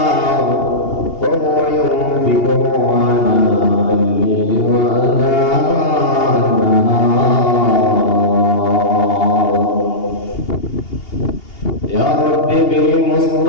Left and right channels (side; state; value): right; late; 2.8 ms